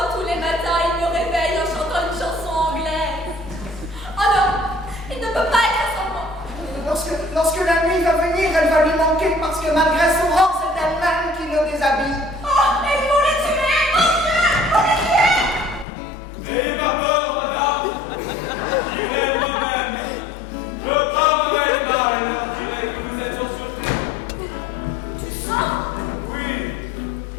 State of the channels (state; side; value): drops out; right; at 15.9 s